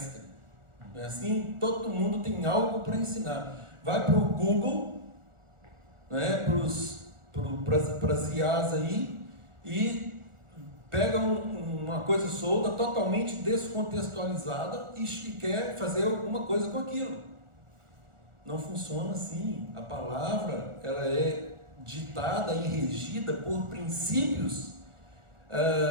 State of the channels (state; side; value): late; left; 1.4 ms